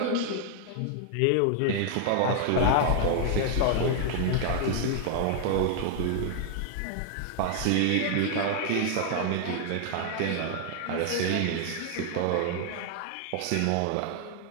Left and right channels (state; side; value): different; both; correlation 0.00